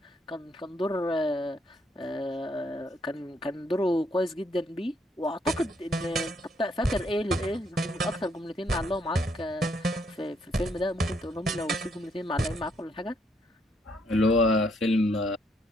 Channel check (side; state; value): both; normal; correlation 0.72